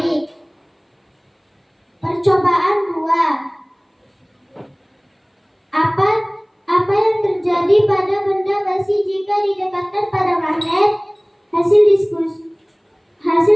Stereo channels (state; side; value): identical; both; correlation 1.00